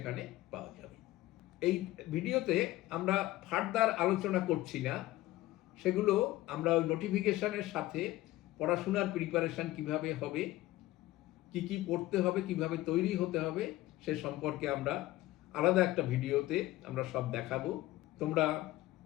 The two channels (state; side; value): quieter; right; 16.9 dB